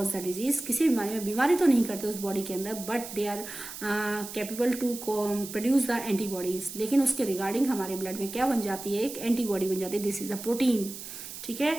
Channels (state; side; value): noise; right; hiss, 11 dB below the sound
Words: the disease. किसी बीमारी में बीमारी तो नहीं करते उस बॉडी के अंदर, but they are capable to produce the antibodies. लेकिन उसके रिगार्डिंग हमारे ब्लड में क्या बन जाती है, एक एंटीबॉडी बन जाती है, दिस इज द प्रोटीन। ठीक